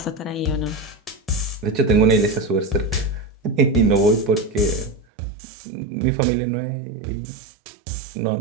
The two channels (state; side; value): drops out; left; at 5.1 s